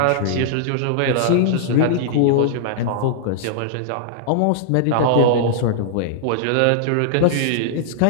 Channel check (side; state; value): both; different; correlation -0.01